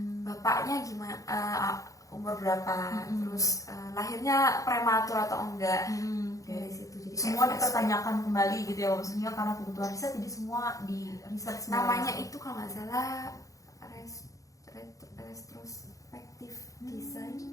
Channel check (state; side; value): late; right; 0.16 ms